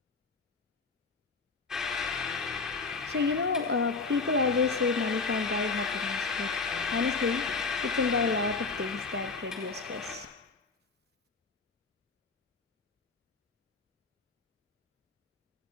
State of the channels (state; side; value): quieter; right; 4.3 dB